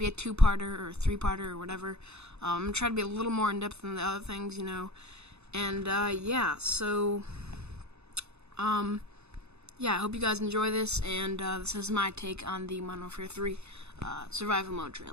a two-parter or three-parter or whatever. I'm gonna try to be a little more in-depth than the other things, and, yeah, so, yeah, I hope you guys enjoy this, and this is my take on the Modern Warfare 3 survival mode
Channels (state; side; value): late; left; 0.80 ms